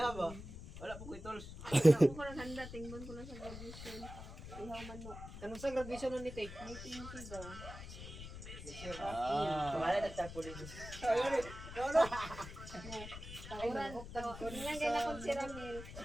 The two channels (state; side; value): noise; left; rumble, 11 dB below the sound